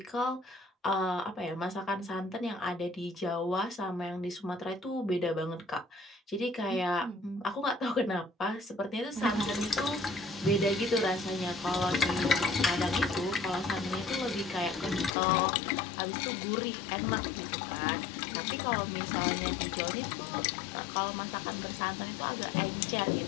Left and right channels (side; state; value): right; drops out; at 15.1 s